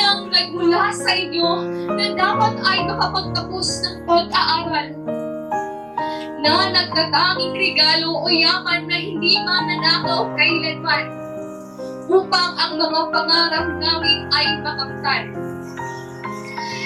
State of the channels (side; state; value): both; identical; correlation 1.00